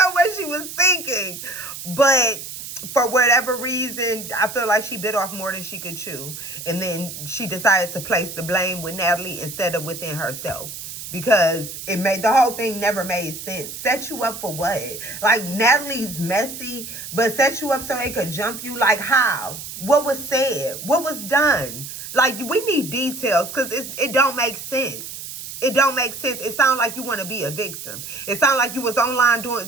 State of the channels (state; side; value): noise; right; hiss, 10 dB below the sound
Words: what she was thinking. But for whatever reason, I feel like she bit off more than she could chew. And then she decided to place the blame with Natalie instead of within herself. Because the whole thing never made sense. Set you up for what? Like, Natalie's messy, but set you up so they could jump you? Like, how? What was said? What was done? Like, we need details, because it don't make sense. It don't make sense. It sounds like you want to be a victim. It sounds like you was online